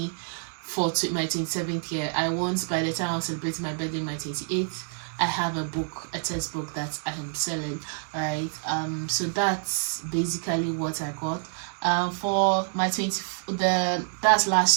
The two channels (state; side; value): silent; left; 60 dB below the other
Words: for my 27th year. I want, by the time I'm celebrating my birthday, my 28th, I have a book, a textbook that I am selling, right? So that's basically what I got. For my that's